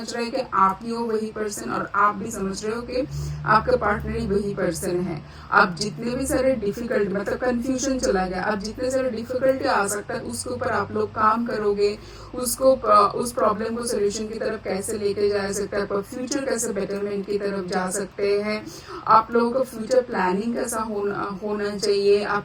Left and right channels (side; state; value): both; identical; correlation 1.00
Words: रहे हैं कि आप ही हो वही पर्सन और आप भी समझ रहे हो कि आपका पार्टनर ही वही पर्सन है। अब जितने भी सारे डिफिकल्ट मतलब कंफ्यूजन चला गया, अब जितने सारे डिफिकल्टी आ सकता है उसके ऊपर आप लोग काम करोगे, उसको उस प्रॉब्लम को सोल्यूशन की तरफ कैसे लेके जा सकते हैं, फ्यूचर कैसे बेटरमेंट की तरफ जा सकते हैं, आप लोगों का फ्यूचर प्लानिंग कैसा होना चाहिए,